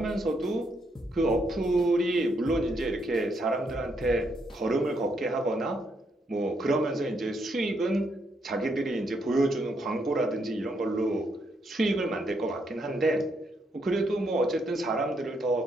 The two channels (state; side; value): normal; both; correlation 0.76